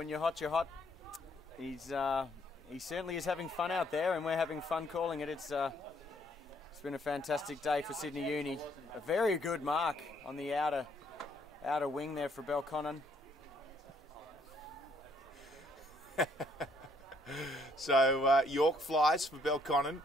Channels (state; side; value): normal; both; correlation 0.67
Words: you're hot, you're hot. He certainly is having fun out there, and we're having fun calling it. It's been a fantastic day for Sydney Uni. A very good mark on the outer wing there for Belconnen. So York flies for Belconnen.